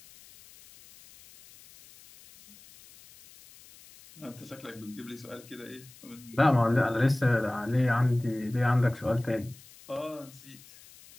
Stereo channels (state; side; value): noise; left; hiss, 22 dB below the sound